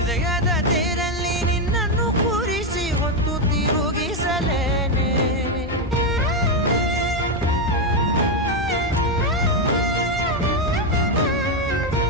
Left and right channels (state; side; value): normal; both; correlation 0.05